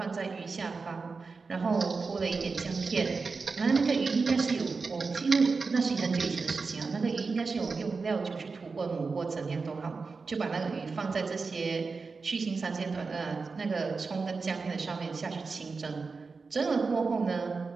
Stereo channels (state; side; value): quieter; left; 4.5 dB